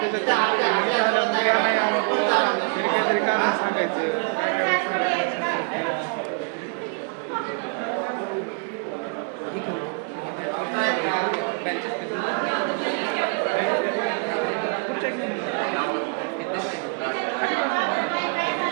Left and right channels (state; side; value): quieter; left; 38.7 dB